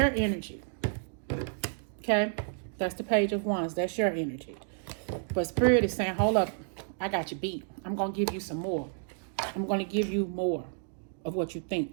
Okay? That's the Page of Wands. That's your energy. But Spirit is saying, hold up, I got you beat. I'm going to give you some more. I'm going to give you more of what you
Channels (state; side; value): silent; left; digital silence